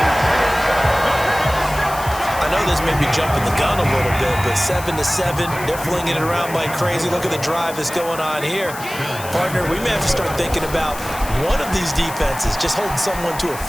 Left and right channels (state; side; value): noise; left; hiss, 13 dB below the sound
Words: I know this may be jumping the gun a little bit, but 7-7, they're flinging it around like crazy. Look at the drive that's going on here. Partner, we may have to start thinking about one of these defenses just holding someone to a